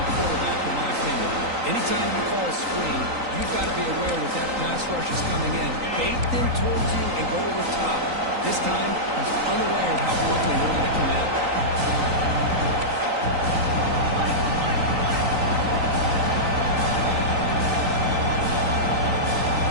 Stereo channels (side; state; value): left; late; 3.9 ms